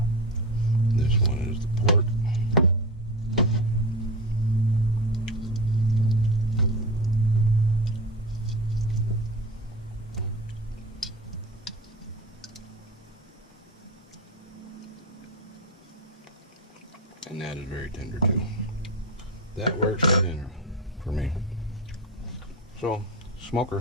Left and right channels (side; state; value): both; normal; correlation 0.26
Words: This one is the pork. And that is very tender too. That works for dinner for me. So,